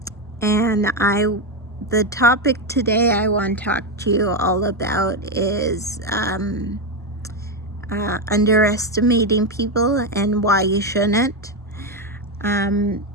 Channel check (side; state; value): both; normal; correlation 0.09